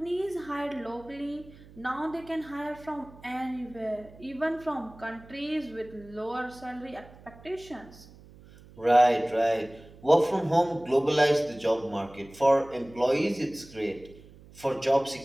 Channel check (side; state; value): right; noise; hum, 22 dB below the sound